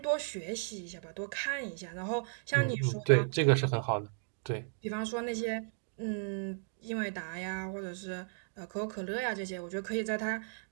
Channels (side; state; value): left; silent; digital silence